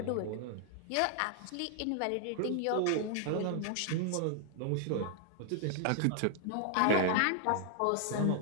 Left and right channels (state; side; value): different; both; correlation -0.01